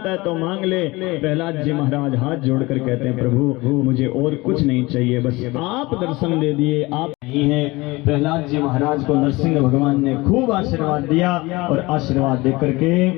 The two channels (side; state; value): right; quieter; 22.1 dB